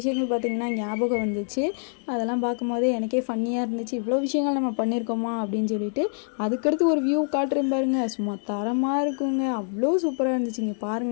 பார்த்திங்கன்னா ஞாபகம் வந்துச்சு. அதெல்லாம் பார்க்கும்போதே எனக்கே ஃபன்னியாக இருந்துச்சு. இவ்வளோ விஷயங்கள் நம்ம பண்ணியிருக்கோமா அப்படின்னு சொல்லிட்டு. அதுக்கடுத்து ஒரு வியூ காட்டுறேன் பாருங்கள். சும்மா தரமாக இருக்குங்க. அவ்வளோ சூப்பராக இருந்துச்சுங்க.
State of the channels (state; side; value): silent; right; 61 dB below the other